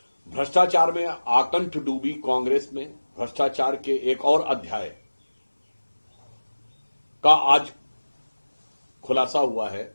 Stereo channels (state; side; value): inverted; both; correlation -1.00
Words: भ्रष्टाचार में आकंठ डूबी कांग्रेस में भ्रष्टाचार के एक और अध्याय का आज खुलासा हुआ है,